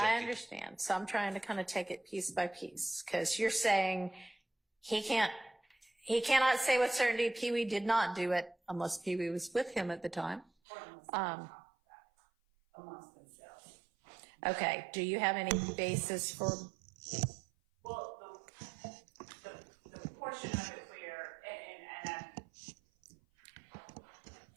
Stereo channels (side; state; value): left; drops out; at 10.5 s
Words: I understand. So I'm trying to kind of take it piece by piece, because you're saying he cannot say with certainty Pee Wee did not do it unless Pee Wee was with him at the time. Amongst themselves. Okay. Do you have any basis for? Well, the portion of it where,